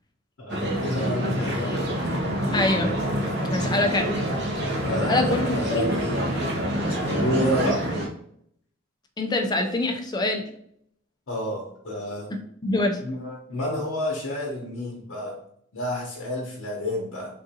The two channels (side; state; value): both; normal; correlation 0.35